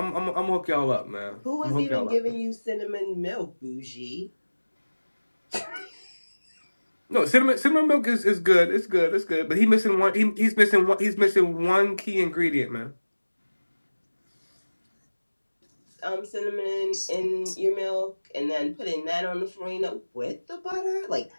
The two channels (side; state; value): both; inverted; correlation -1.00